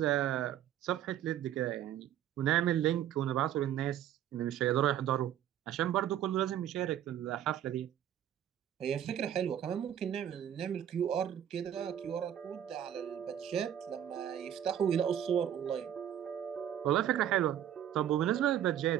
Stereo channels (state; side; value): quieter; left; 10.7 dB